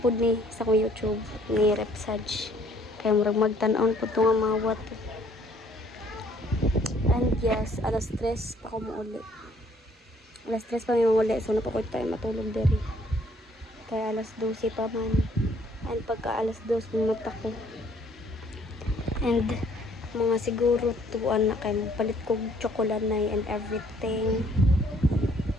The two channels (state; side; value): normal; both; correlation 0.62